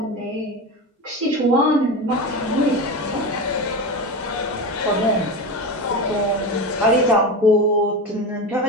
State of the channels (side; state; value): both; normal; correlation 0.23